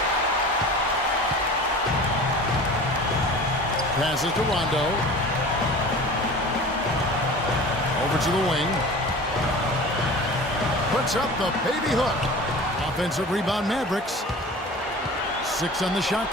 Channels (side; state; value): both; normal; correlation 0.39